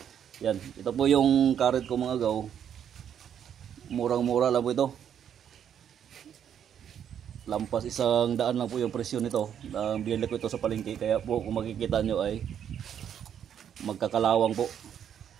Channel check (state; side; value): quieter; left; 9.0 dB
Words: Yan, ito po yung karet ko mga agaw. Murang-mura lang po ito. Lampas 100 lang po yung presyo nito. Binili ko ito sa palengke, kaya po kung makikita nyo ay magkakalawang po